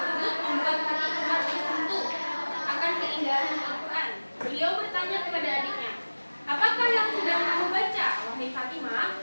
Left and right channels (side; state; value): both; inverted; correlation -1.00